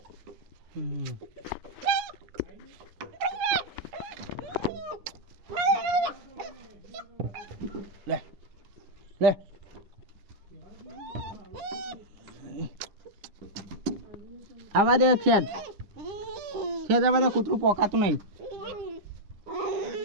લે લે આવા દે ખેડ ખેડ આવા દે કૂતરું પોકાતું નહીં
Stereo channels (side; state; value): left; late; 10 ms